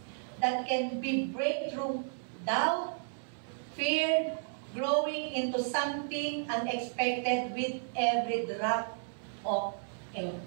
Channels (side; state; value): left; silent; 56 dB below the other